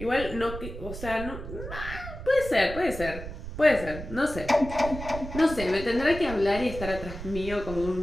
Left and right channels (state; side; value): noise; right; rumble, 10 dB below the sound